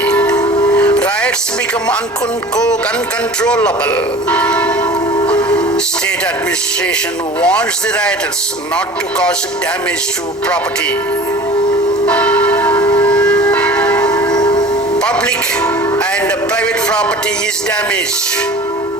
Riots become uncontrollable. State administration warns the rioters not to cause damage to property. Public and private property is damaged.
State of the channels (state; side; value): normal; both; correlation 0.42